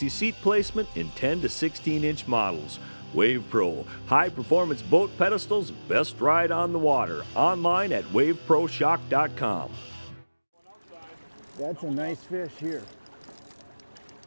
seat placement in 10 to 16-inch models. WavePro high-performance boat pedestals, best ride on the water. Online at waveproshock.com. That's a nice fish here.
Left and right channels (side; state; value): both; inverted; correlation -1.00